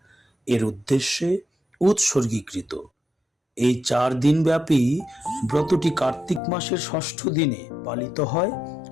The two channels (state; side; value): drops out; right; at 6.4 s